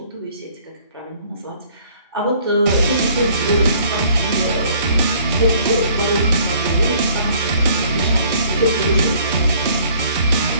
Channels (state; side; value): inverted; both; correlation -0.58